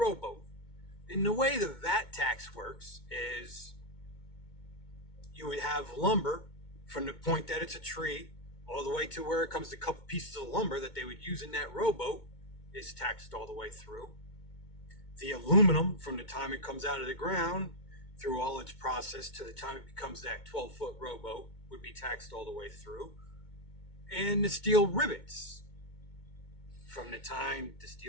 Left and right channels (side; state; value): right; late; 2.2 ms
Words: And the way the VAT tax works is you would have lumber from the point that it's a tree all the way to where it comes to a couple pieces of lumber that they would use in that rowboat is taxed all the way through. The aluminum from the time it comes out of the ground through all its process to the time it becomes that 12-foot rowboat would be taxed all the way through. And the steel rivets from the time the